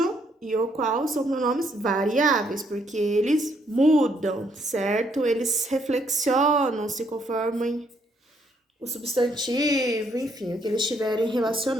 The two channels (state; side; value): normal; both; correlation 0.71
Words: e o qual são pronomes variáveis, porque eles mudam, certo? Eles reflexionam, se conformam o substantivo, enfim, o que eles estiverem